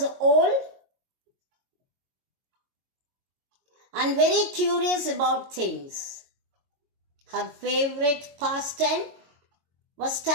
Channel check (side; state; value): left; late; 22 ms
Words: old and very curious about things. Her favorite pastime was